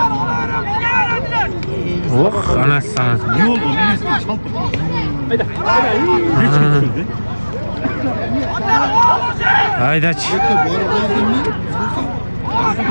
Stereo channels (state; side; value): inverted; both; correlation -1.00